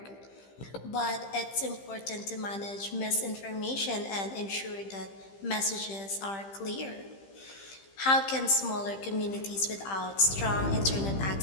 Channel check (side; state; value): right; late; 15 ms